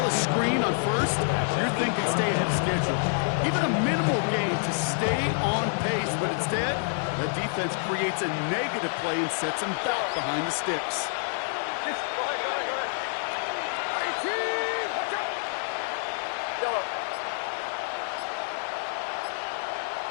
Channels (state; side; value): silent; right; digital silence